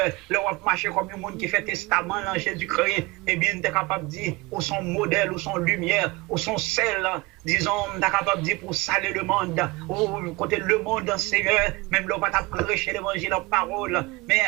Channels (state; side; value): quieter; left; 23.3 dB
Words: le roi marcher comme un monde qui fait testament dans Jésus-Christ. Eh bien, tu es capable de dire, où son modèle, où son lumière, où son celle, disons, on est capable de dire pour saler le monde, ou côté le monde, Seigneur, même là, on va prêcher l'évangile en parole, mais